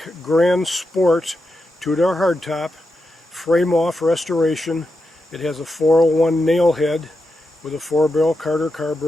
Grand Sport 2-door hardtop, frame-off restoration. It has a 401 nail head with a 4-barrel Carter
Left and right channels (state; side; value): normal; both; correlation 0.87